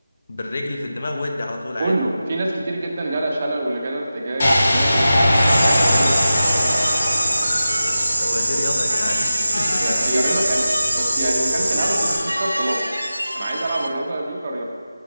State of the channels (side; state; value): both; inverted; correlation -0.94